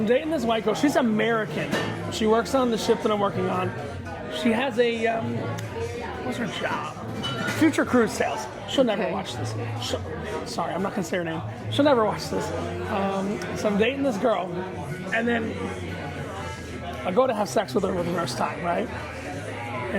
dating this white girl. She's American. She works on the ship that I'm working on. She has a, what's her job? Future cruise sales. She'll never watch this. Sorry, I'm not going to say her name. She'll never watch this. So I'm dating this girl. And then I go to have sex with her for the first time, right?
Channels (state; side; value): identical; both; correlation 1.00